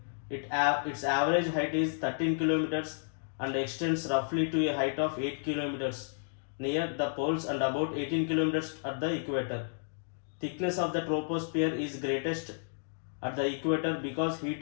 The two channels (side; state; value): right; silent; digital silence